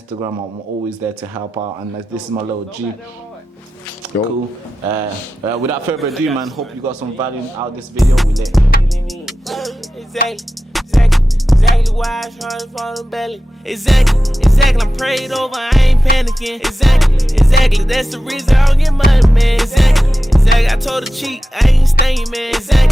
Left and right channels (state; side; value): normal; both; correlation 0.93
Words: I'm always there to help out. And this is my little G. Cool. Without further ado, man, hope you got some value out of this video. We lit. Exactly why I try to fall in belly. Exactly, I'm prayed over, I ain't panicking. Exactly, that's the reason I don't get money, man. Exactly, I told her cheat, I ain't staying, man.